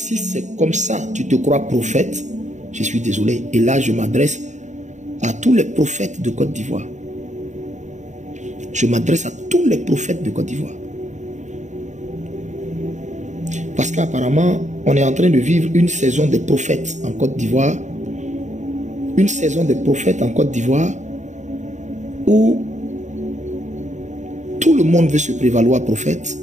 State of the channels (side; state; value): left; late; 0.34 ms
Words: comme ça, tu te crois prophète, je suis désolé. Et là, je m'adresse à tous les prophètes de Côte d'Ivoire. Je m'adresse à tous les prophètes de Côte d'Ivoire. Parce qu'apparemment, on est en train de vivre une saison des prophètes en Côte d'Ivoire. Une saison des prophètes en Côte d'Ivoire où tout le monde veut se prévaloir prophète.